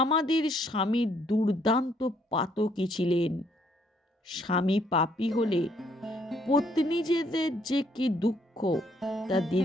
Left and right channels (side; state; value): both; normal; correlation 0.68